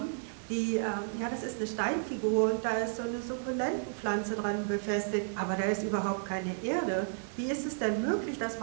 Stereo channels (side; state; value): left; silent; 56 dB below the other